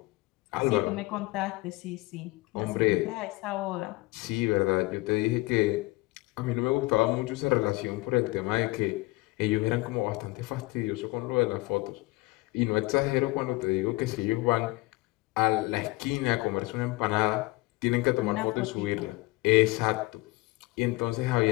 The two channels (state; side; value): quieter; right; 22.4 dB